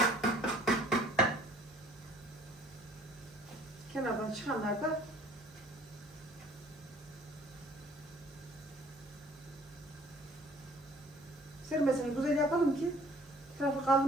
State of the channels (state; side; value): normal; both; correlation 0.55